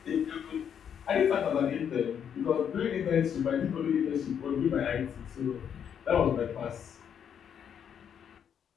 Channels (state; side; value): quieter; right; 8.3 dB